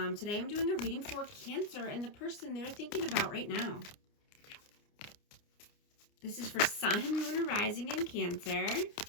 Today I'm doing a reading for Cancer and the person they're thinking about right now. This is for Sun, Moon, and Rising in Cancer.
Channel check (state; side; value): late; right; 29 ms